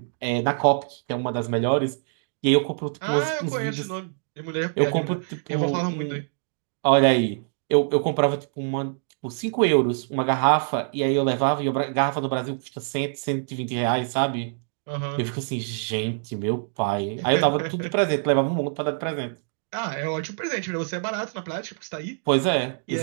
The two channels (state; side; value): silent; left; digital silence